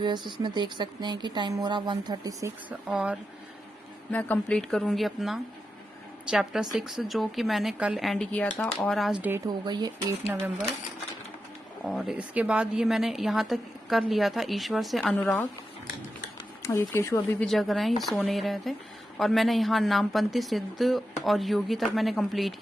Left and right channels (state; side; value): normal; both; correlation 0.89